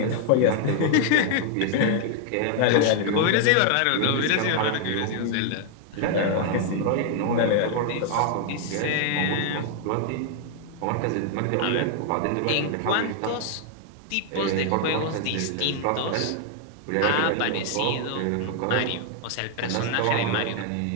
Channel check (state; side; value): different; both; correlation 0.00